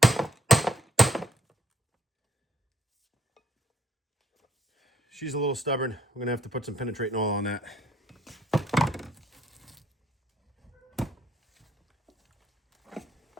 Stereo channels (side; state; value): both; normal; correlation 0.65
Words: she's a little stubborn. We're gonna have to put some penetrating oil on that.